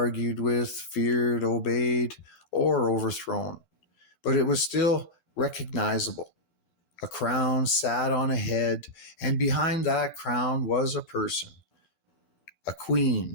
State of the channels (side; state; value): right; late; 12 ms